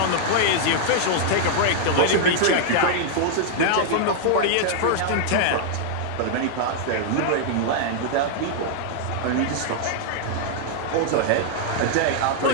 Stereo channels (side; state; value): both; different; correlation -0.01